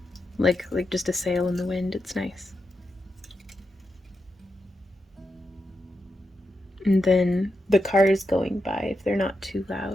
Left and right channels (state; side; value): normal; both; correlation 0.87